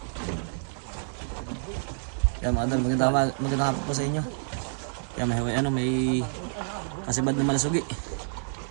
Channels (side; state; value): left; silent; digital silence